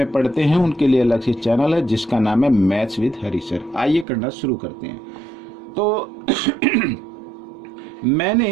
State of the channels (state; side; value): drops out; left; at 4.0 s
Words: पढ़ते हैं उनके लिए अलग से चैनल है जिसका नाम है मैथ्स विद हरी सर। आइए करना शुरू करते हैं। तो